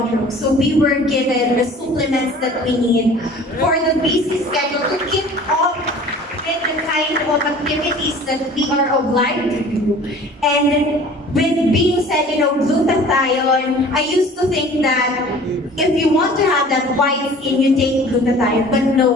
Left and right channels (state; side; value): normal; both; correlation 0.46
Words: Row. So we were given the supplements that we need for the busy schedule to keep up with the kind of activities that we are obliged to do. And with being said, glutathione, I used to think that if you want to have that white skin, you take glutathione. But